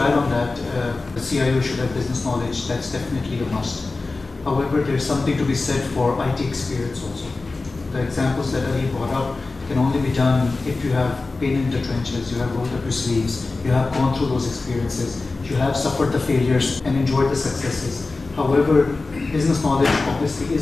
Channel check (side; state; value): right; quieter; 3.6 dB